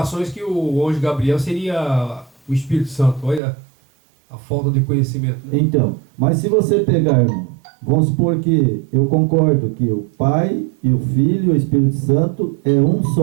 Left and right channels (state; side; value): drops out; left; at 3.4 s